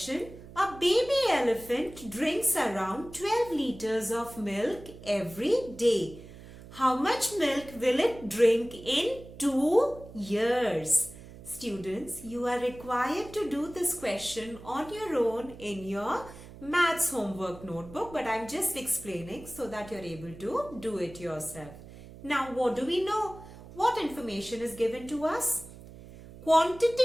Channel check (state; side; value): noise; right; hum, 17 dB below the sound